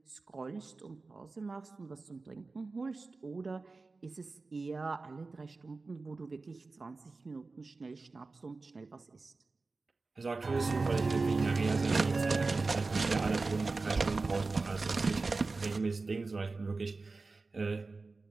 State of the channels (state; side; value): quieter; left; 3.8 dB